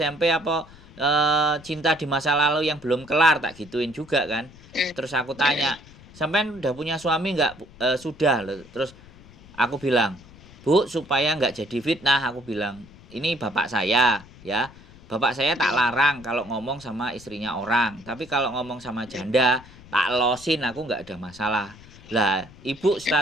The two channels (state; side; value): noise; left; rumble, 21 dB below the sound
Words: apa cinta di masa lalu yang belum kelar?" Tak gituin juga kan. Terus aku tanya, "Sampean udah punya suami nggak?" Sudah loh." Terus aku bilang, "Bu, supaya nggak jadi fitnah," aku bilang, "ini bapak saya ya. Bapak saya tak larang kalau ngomong sama istrinya orang. Tapi kalau ngomong sama janda, tak losin aku nggak ada masalah. Lah, ibu